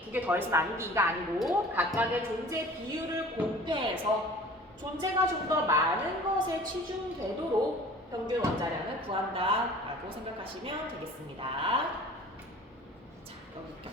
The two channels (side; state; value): both; normal; correlation 0.45